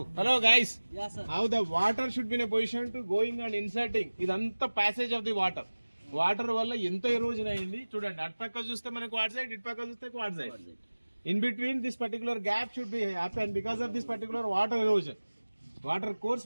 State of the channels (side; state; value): both; inverted; correlation -1.00